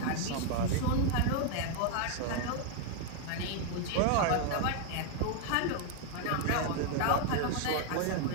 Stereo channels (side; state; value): both; different; correlation 0.01